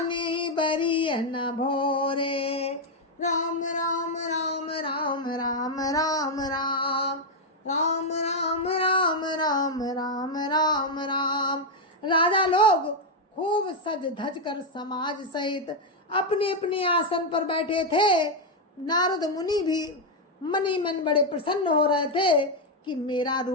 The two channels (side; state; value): both; normal; correlation 0.02